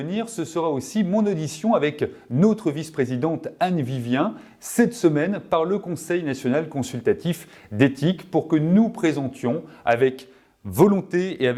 ce sera aussi mon audition avec notre vice-présidente Anne Vivien cette semaine par le Conseil national consultatif d'éthique pour que nous présentions avec volonté et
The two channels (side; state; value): both; identical; correlation 1.00